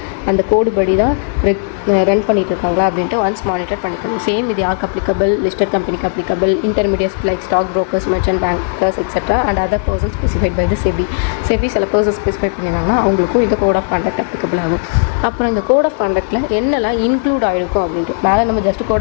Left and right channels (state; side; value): silent; right; digital silence